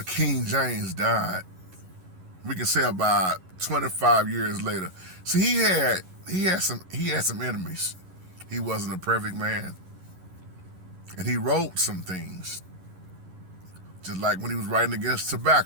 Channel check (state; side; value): late; left; 11 ms